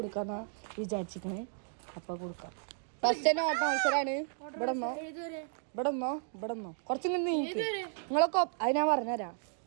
വിചാരിച്ചിരിക്കണേ. അപ്പോൾ കൊടുക്കാം. ഫസ്റ്റ് തന്നെ ഓട്ട മത്സരമാണ്. ഇവിടെന്നോ കുറച്ചിങ്ങനെ നീക്ക്. നിങ്ങളൊക്കെ അത് ഞാൻ പറഞ്ഞുതരാം.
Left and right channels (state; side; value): silent; left; digital silence